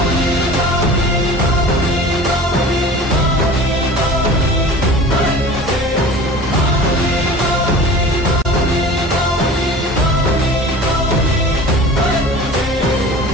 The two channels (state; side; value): normal; both; correlation 0.40